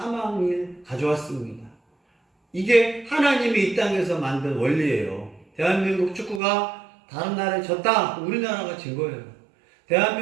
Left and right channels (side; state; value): left; drops out; at 6.4 s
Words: 가져왔습니다. 이게 하나님이 이 땅에서 만든 원리예요. 대한민국 축구가 다른 나라에 졌다, 우리나라가 진 거예요.